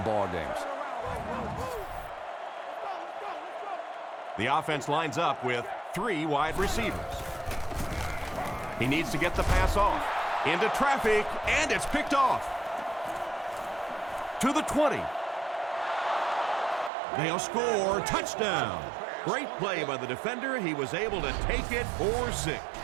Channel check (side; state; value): left; drops out; at 16.9 s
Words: ball games. The offense lines up with 3 wide receivers. He needs to get the pass off. Into traffic, and it's picked off. To the 20. They'll score. Touchdown. Great play by the defender. He was able to take it for 6.